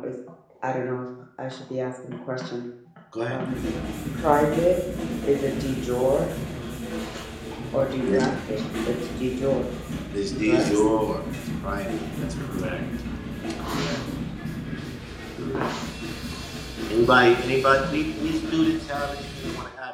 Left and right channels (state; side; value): identical; both; correlation 1.00